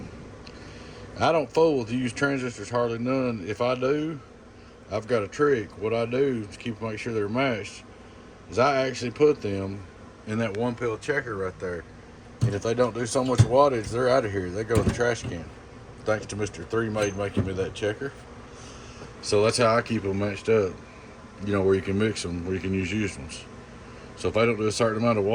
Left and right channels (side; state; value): both; identical; correlation 1.00